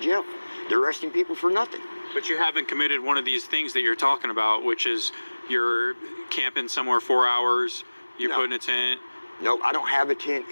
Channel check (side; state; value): both; inverted; correlation -1.00